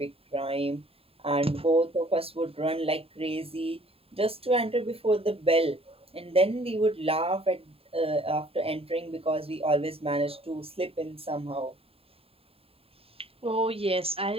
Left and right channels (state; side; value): late; left; 0.27 ms